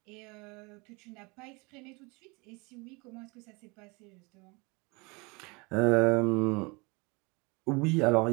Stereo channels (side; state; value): left; quieter; 27.7 dB